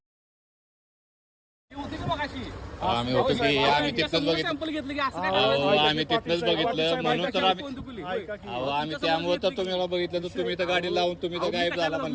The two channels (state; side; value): identical; both; correlation 1.00